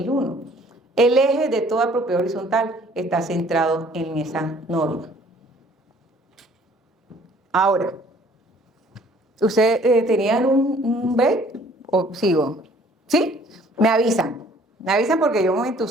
El eje de toda propiedad horizontal está centrado en esa norma. Ahora, ¿ustedes tenían un B o sigo? ¿Sí? Me avisan porque yo me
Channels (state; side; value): normal; both; correlation 0.57